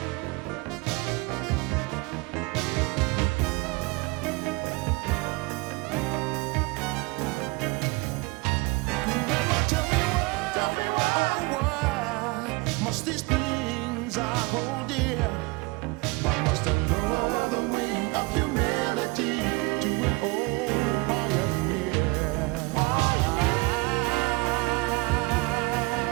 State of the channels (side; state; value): left; quieter; 26.0 dB